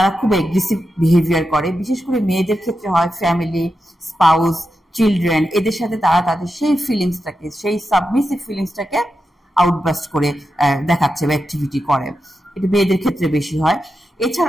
খুব এগ্রেসিভ বিহেভিয়ার করে, বিশেষ করে মেয়েদের ক্ষেত্রে হয়। ফ্যামিলি, স্পাউস, চিলড্রেন, এদের সাথে তারা তাদের সেই ফিলিংসটাকে, সেই সাবমিসিভ ফিলিংসটাকে আউটবাস্ট করে দেখাচ্ছে বা অ্যাক্টিভিটি করে। এটা মেয়েদের ক্ষেত্রে বেশি হয়।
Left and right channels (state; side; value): normal; both; correlation 0.89